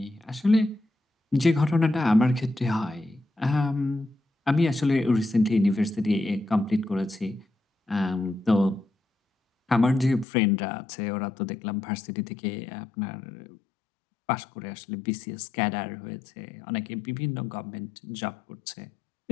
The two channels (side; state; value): right; drops out; at 10.2 s